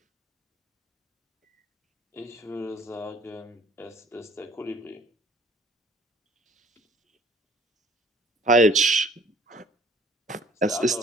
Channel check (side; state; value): both; normal; correlation 0.55